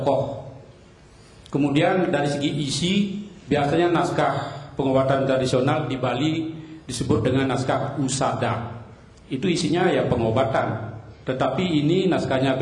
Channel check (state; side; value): identical; both; correlation 1.00